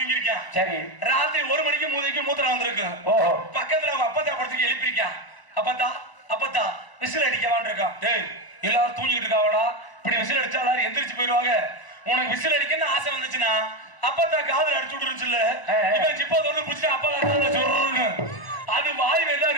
இருக்கான். சரி. ராத்திரி 1 மணிக்கு மூதைக்கு மூத்திரம் வந்திருக்கு. பக்கத்துல அவங்க அப்பத்தா படுத்துக்கு எழுப்பிருக்கான். அப்பத்தா விசில் அடிக்க வேண்டியிருக்கான். டேய் எல்லாரும் தூங்கிட்டு இருக்காவடா, இப்படி விசில் அடிச்சா எல்லாரும் எந்திரிச்சு போயிருவாங்க. உனக்கு விசில் அடிக்கன்னு ஆசை வந்துச்சுன்னா அப்பத்தா காதல் அடிச்சு விட்டுருச்சுல்ல, இவன் ஜிப்பா தொடர்ந்து பிடிச்சிட்டு அப்பா காதல சொல்றன்னு அது வாய் வெளில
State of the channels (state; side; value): late; right; 1.0 ms